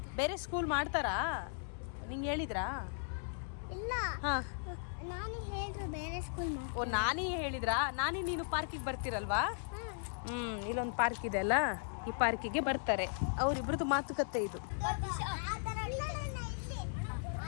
ಬೇರೆ ಸ್ಕೂಲ್ ಮಾಡ್ತಾರಾ? ನಿಂಗೆ ಹೇಳಿದ್ರಾ? ಇಲ್ಲ, ಹಾ, ನಾನು ಹೇಳಿದ್ರು ಬೇರೆ ಸ್ಕೂಲ್ ಓ, ನಾನೇ ಹೇಳಿದ್ರಾ? ನೀನು ಪಾರ್ಕಿಗೆ ಬರ್ತೀರಲ್ವಾ? ಇಲ್ಲೊಂದು ಪಾರ್ಕ್ ಇದೆ ಅಲ್ಲ, ಈ ಪಾರ್ಕಿಗೆ ಬರ್ತಾರೆ. ಅವರಿಬ್ರದ್ದು ಮಾತುಕತೆ ಇದು.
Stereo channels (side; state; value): right; silent; digital silence